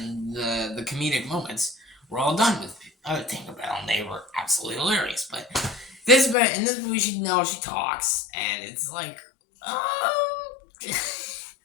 the comedic moments were all done with Tinkerbell, and they were absolutely hilarious. But in this movie, she talks, and it's like,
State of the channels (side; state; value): right; drops out; at 6.4 s